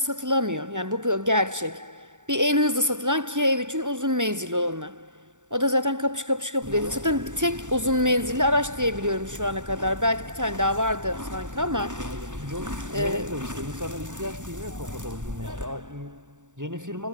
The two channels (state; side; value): late; left; 0.86 ms